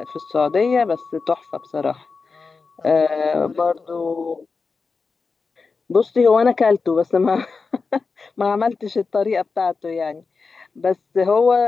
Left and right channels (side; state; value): right; quieter; 4.6 dB